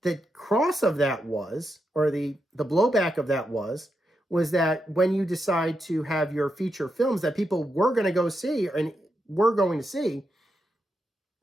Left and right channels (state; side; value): normal; both; correlation 0.85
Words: the cross of that was, or the blowback of that was that when you decide to have your feature films that people were going to go see and were going to see,